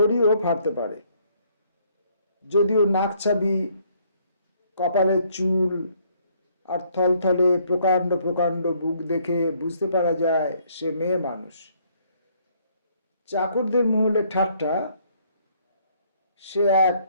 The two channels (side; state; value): both; inverted; correlation -0.66